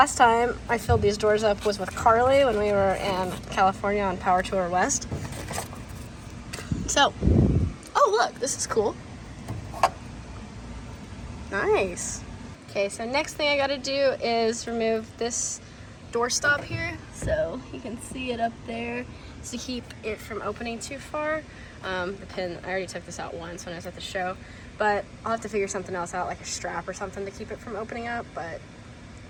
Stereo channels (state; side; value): identical; both; correlation 1.00